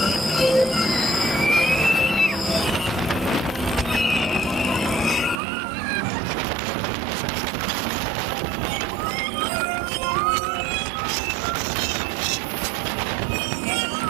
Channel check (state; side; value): drops out; left; at 5.4 s